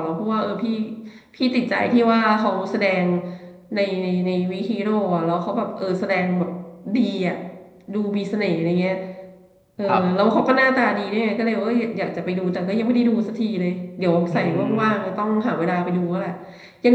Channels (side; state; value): both; identical; correlation 1.00